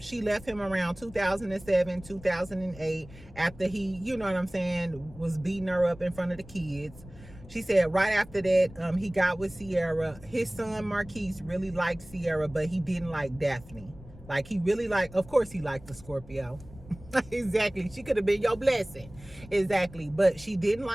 left him around 2007, 2008, after he, you know what I'm saying, was beating her up in front of the kids. She said right after that, he got with Sierra. His son Marquise really liked Sierra, but he didn't like Daphne. Like, he really liked, of course he liked the Scorpio. Exactly. She could have been your blessing. Exactly. But she didn't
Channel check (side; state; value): left; noise; rumble, 19 dB below the sound